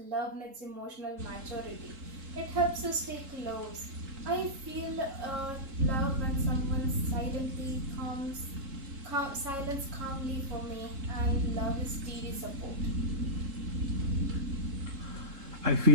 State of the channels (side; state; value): left; late; 3.7 ms